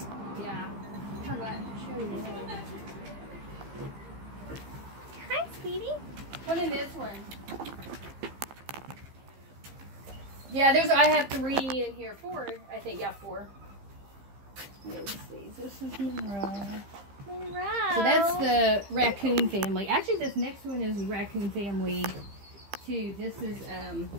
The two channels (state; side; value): late; left; 15 ms